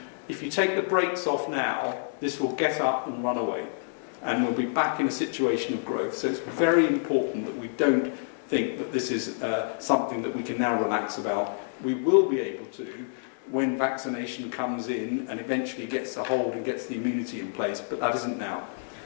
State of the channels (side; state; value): right; silent; digital silence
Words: If you take the brakes off now, this will get up and run away, and we'll be back in a situation of growth. So it's very important that we don't think that this is something that we can now relax about. We will be able to when vaccination comes in and eventually gets a hold and gets the immunity in place, but that isn't now.